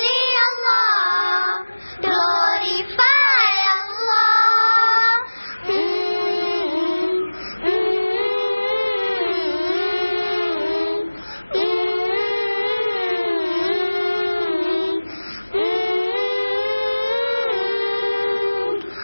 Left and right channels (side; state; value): both; inverted; correlation -1.00